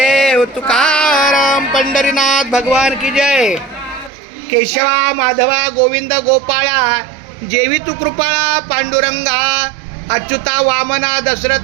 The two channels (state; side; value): drops out; left; at 4.1 s